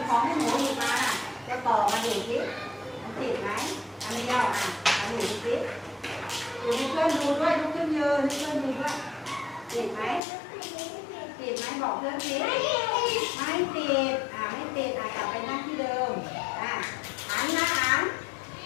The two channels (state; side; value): drops out; right; at 10.2 s